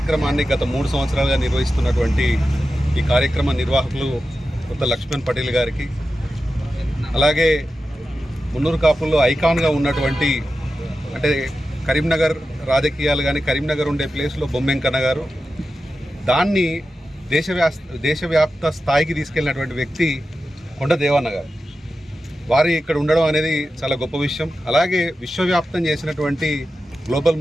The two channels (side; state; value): both; normal; correlation 0.92